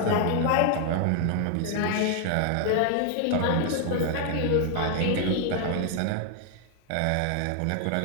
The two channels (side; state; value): both; different; correlation 0.00